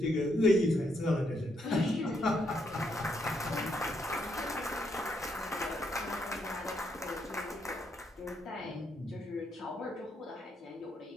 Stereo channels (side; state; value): both; normal; correlation 0.76